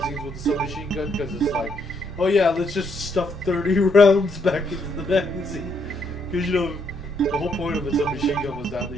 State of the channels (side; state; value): both; normal; correlation 0.73